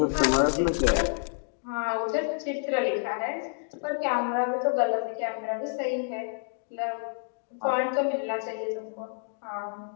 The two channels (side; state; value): right; silent; 58 dB below the other